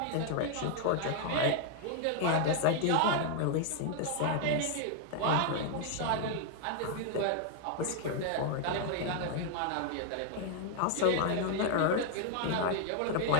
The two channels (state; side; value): different; both; correlation 0.00